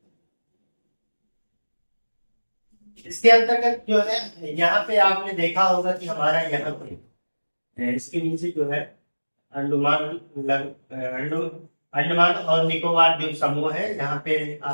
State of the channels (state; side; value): inverted; both; correlation -1.00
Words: इसके अंतर्गत जो है यहाँ पे आपने देखा होगा कि हमारा यहाँ पे इसके नीचे जो है अंडमान अंडमान और निकोबार द्वीप समूह है, यहाँ पे